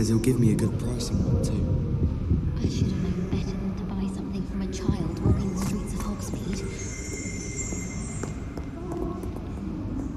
he'll give me a good price on one too. I should have known better than to buy something from a child walking the streets of Hogsmeade.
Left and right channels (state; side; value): identical; both; correlation 1.00